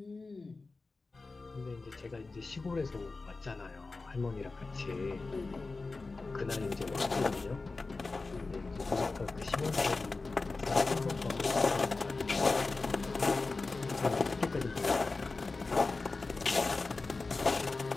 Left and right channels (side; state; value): right; quieter; 3.7 dB